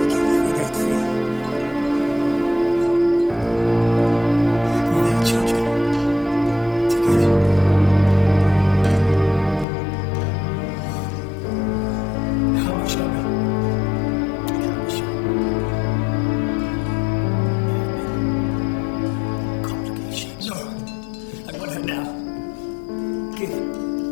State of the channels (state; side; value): drops out; right; at 9.7 s